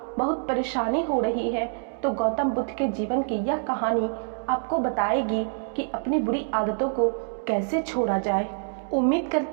बहुत परेशानी हो रही है, तो गौतम बुद्ध के जीवन की यह कहानी आपको बताएगी कि अपनी बुरी आदतों को कैसे छोड़ा जाए। उम्मीद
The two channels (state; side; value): silent; left; digital silence